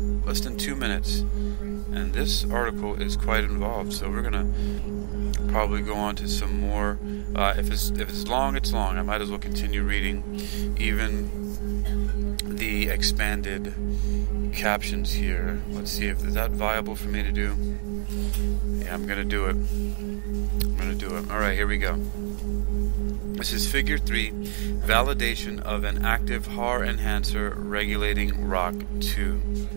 Less than 2 minutes. And this article is quite involved, so we're going to probably go on to some more. If it's long, it's long. I might as well continue reading even the expanded captions here. Let's see if is that viable for me to do. Yeah, I'm gonna do it. Alright, here we go. This is figure 3, validation of an active HAR enhancer regulating ROCK2.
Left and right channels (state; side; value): silent; left; digital silence